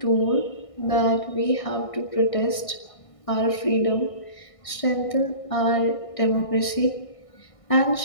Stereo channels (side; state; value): right; late; 1.6 ms